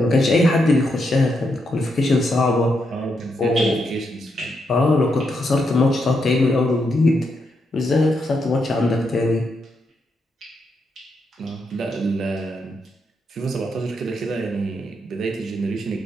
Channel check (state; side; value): normal; both; correlation 0.81